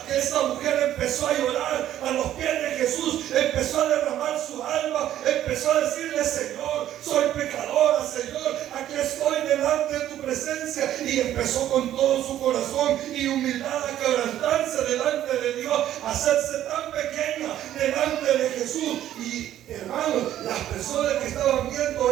que esta mujer empezó a llorar a los pies de Jesús, empezó a derramar su alma, empezó a decirle: Señor, soy pecadora, Señor, aquí estoy delante de tu presencia. Y empezó con todo su corazón y humildad a quebrantarse delante de Dios, a hacerse tan pequeña delante de Jesús. Y hermanos, las personas que estaban viendo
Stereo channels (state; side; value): quieter; left; 12.0 dB